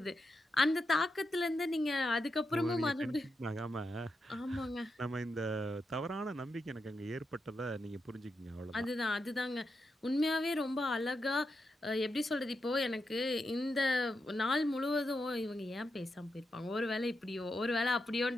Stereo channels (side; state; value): both; normal; correlation 0.86